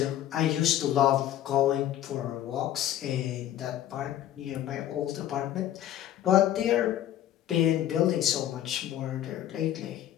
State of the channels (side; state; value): right; quieter; 12.1 dB